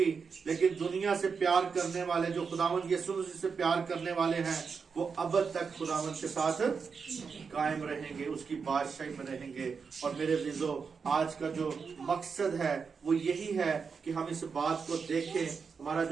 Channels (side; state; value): left; quieter; 5.6 dB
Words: لیکن دنیا سے پیار کرنے والے جو خداوند یسوع مسیح سے پیار کرنے والے ہیں وہ اب تک خداوند کے ساتھ قائم رہیں گے، اس کی بادشاہی میں رہیں گے۔ اور میرے عزیزو آج کا جو مقصد ہے وہ یہی ہے کہ ہم اس بات کو دیکھیں۔ ہمارا